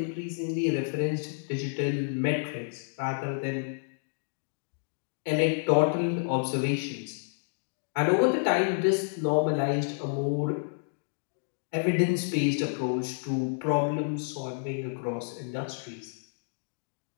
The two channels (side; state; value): right; silent; digital silence